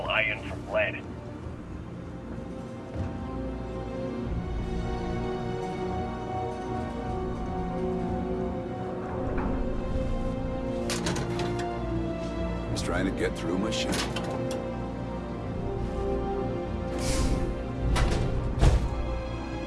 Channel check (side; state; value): both; identical; correlation 1.00